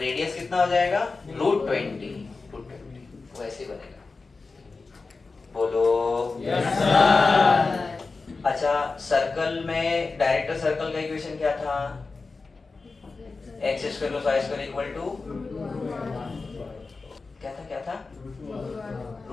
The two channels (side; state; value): right; quieter; 4.0 dB